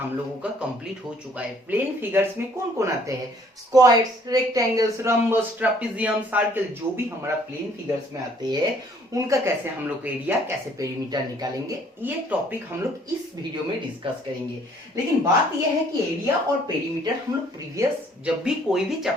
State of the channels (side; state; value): both; normal; correlation 0.60